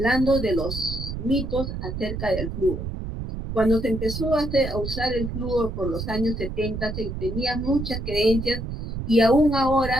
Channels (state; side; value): noise; right; rumble, 6 dB below the sound